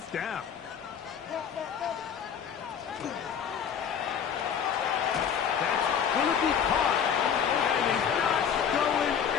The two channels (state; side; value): quieter; right; 7.8 dB